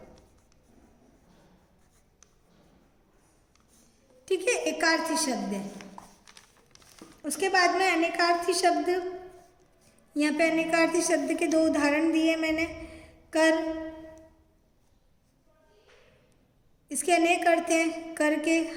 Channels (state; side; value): identical; both; correlation 1.00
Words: ठीक है, एकार्थी शब्द है। उसके बाद में अनेकार्थी शब्द, यहाँ पे अनेकार्थी शब्द के 2 उदाहरण दिए मैंने। कर, इसके अनेक अर्थ हैं, कर के